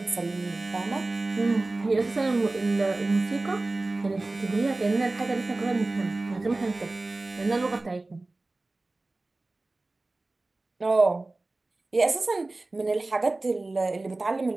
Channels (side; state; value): left; quieter; 3.1 dB